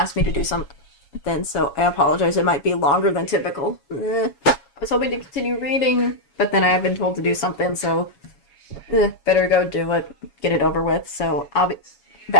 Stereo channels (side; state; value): right; late; 7.2 ms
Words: me to do something, so I apologize. It might be longer than typical. I was hoping to continue reading, but then I have been told to do something, so better go do it. Get it over with. So I'll be